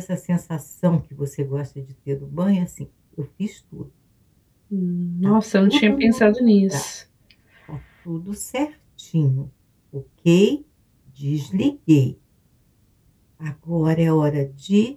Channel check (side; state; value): both; identical; correlation 1.00